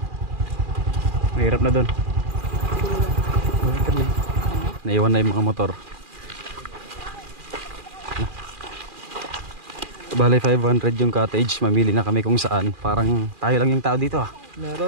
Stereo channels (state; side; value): late; left; 2.4 ms